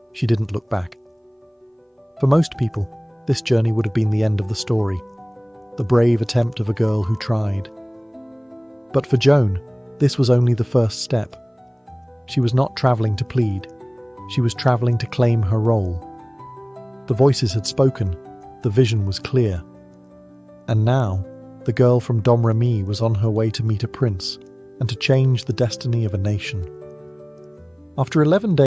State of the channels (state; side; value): identical; both; correlation 1.00